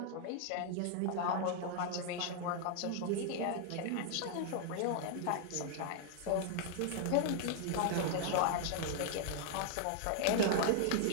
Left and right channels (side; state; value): both; different; correlation 0.00